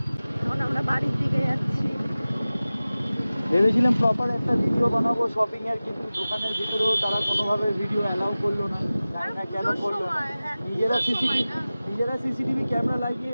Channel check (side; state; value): both; inverted; correlation -0.97